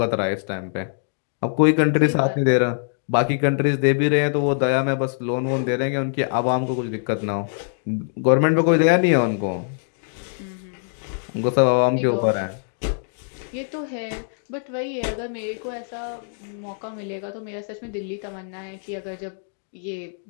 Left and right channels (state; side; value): silent; right; digital silence